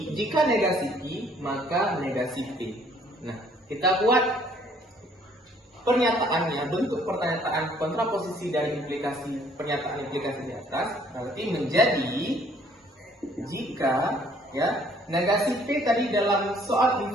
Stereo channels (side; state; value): both; normal; correlation 0.61